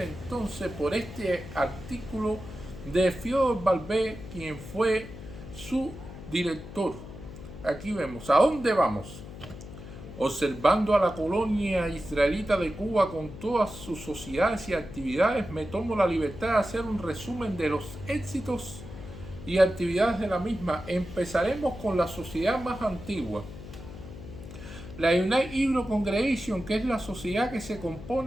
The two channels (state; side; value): noise; left; hum, 13 dB below the sound